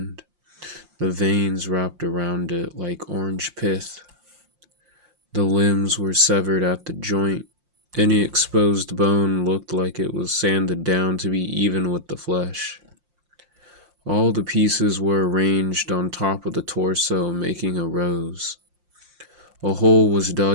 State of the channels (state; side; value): late; left; 5.7 ms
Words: the veins wrapped around it like orange pith. The limbs were severed at the joint. Any exposed bone looked like it was sanded down to be even with the flesh. All the pieces were arranged on top of the torso, making a rose. A hole was